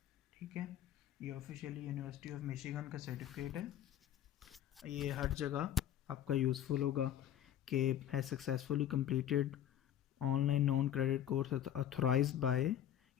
ठीक है। ये ऑफिशियली यूनिवर्सिटी ऑफ मिशिगन का सर्टिफिकेट है। ये हर जगह आपका यूज़फुल होगा कि है successfully completed online non credit course authorised bye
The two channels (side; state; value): right; quieter; 10.9 dB